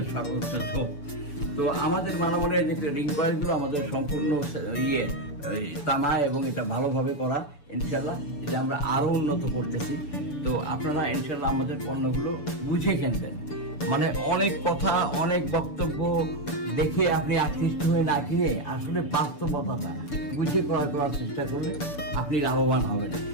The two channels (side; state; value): right; late; 6.9 ms